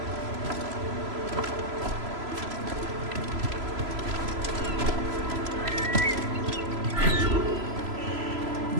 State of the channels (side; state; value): left; late; 3.0 ms